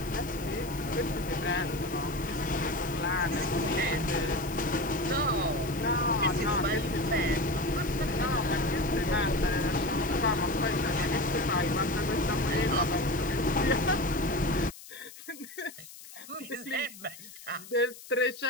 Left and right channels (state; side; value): noise; left; hiss, 17 dB below the sound